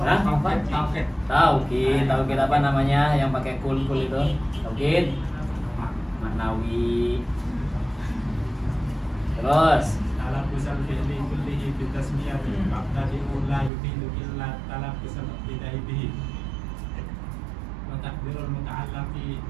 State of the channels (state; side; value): drops out; left; at 13.7 s